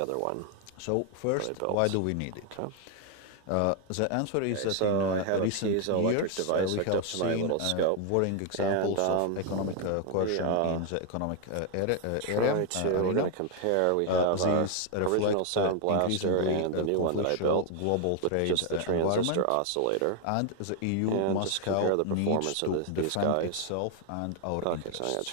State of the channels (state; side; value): different; both; correlation 0.00